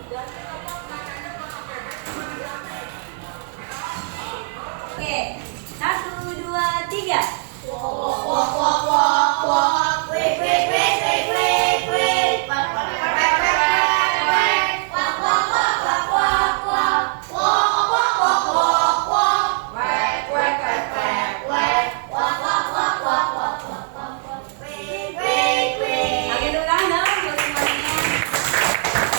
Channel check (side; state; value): left; silent; 65 dB below the other